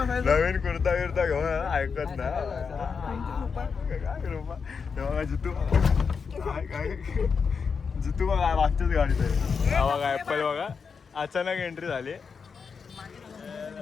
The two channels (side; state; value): right; quieter; 5.7 dB